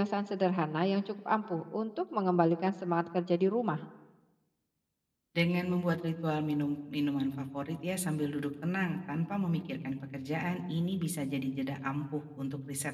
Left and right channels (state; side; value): identical; both; correlation 1.00